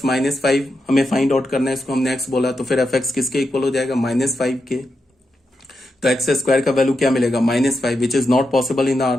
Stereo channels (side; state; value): both; normal; correlation 0.86